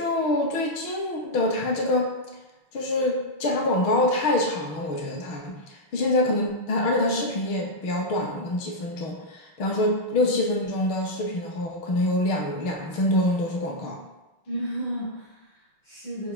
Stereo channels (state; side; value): late; right; 6.4 ms